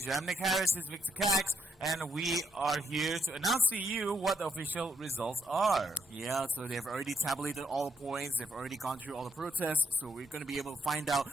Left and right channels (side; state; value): both; normal; correlation 0.76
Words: I'm Nick Harris, this is Victor Cax, and we are here to announce to you what the official results are. Yeah, so they've already tabulated all the points. They've already gone through all the protests. So we're going to be able to find out